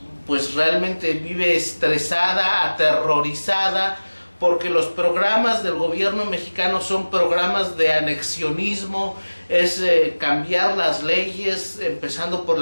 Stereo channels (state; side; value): inverted; both; correlation -1.00